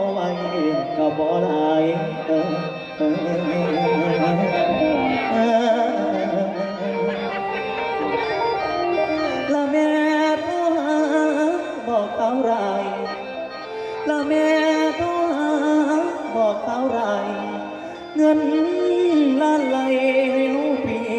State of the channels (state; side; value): identical; both; correlation 1.00